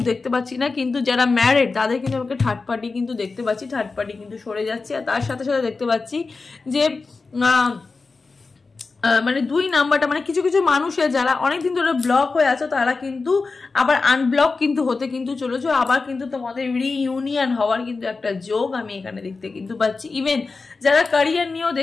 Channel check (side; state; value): right; quieter; 4.1 dB